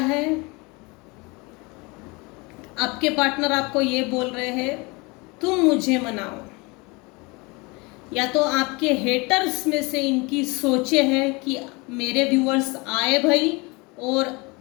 आपके पार्टनर आपको ये बोल रहे हैं तुम मुझे मनाओ, या तो आपके हेटर्स में से इनकी सोचे है कि मेरे व्यूअर्स आए भाई और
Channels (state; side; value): quieter; right; 26.6 dB